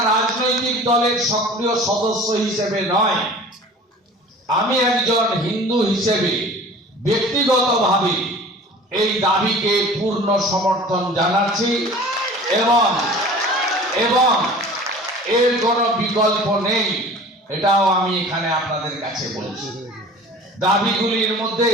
রাজনৈতিক দলের সক্রিয় সদস্য হিসেবে নয়, আমি একজন হিন্দু হিসেবে ব্যক্তিগতভাবে এই দাবিকে পূর্ণ সমর্থন জানাচ্ছি এবং এর কোনো বিকল্প নেই, এটাও আমি এখানে আপনাদের কাছে বলছি। দাবিগুলির মধ্যে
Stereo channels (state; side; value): normal; both; correlation 0.43